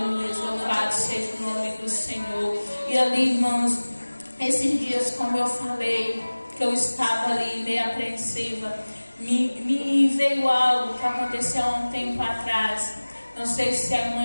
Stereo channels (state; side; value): inverted; both; correlation -1.00